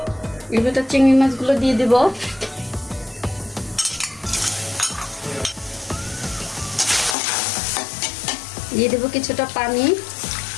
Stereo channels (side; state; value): right; drops out; at 7.2 s